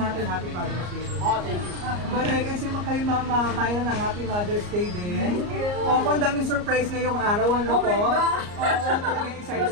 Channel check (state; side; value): late; left; 34 ms